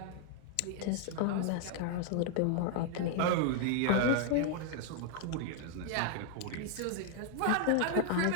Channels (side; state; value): both; different; correlation 0.00